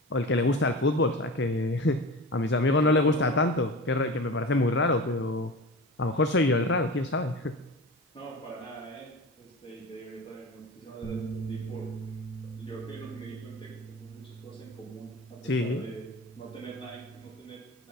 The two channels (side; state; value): both; normal; correlation 0.31